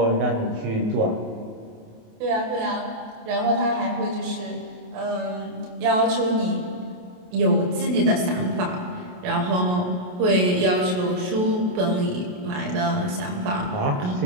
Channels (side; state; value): left; late; 28 ms